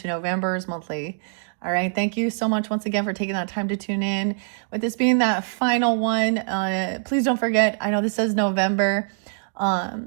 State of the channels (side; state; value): left; silent; digital silence